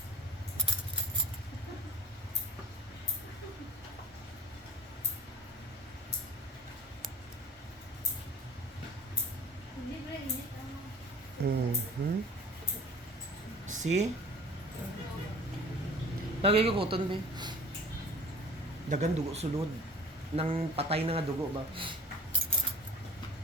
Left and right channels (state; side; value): normal; both; correlation 0.44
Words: Hindi ba init ang See? Lagay ko kuton be. Dagan dugo sulod. Nang patay na nga dugo ba?